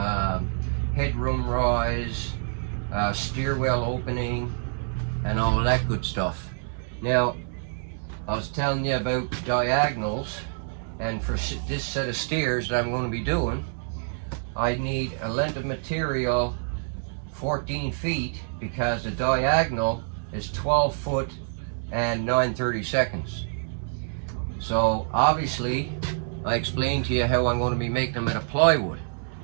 headroom rise, stairwell opening, and all of that good stuff. Now, I was telling you about diagonals, and for this set of stairs that I'm going to be doing, I need a length of material 14 feet because the diagonal is 12 foot and 9/32. So obviously, I explained to you how I'm going to be making them out of plywood.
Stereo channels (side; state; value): left; silent; digital silence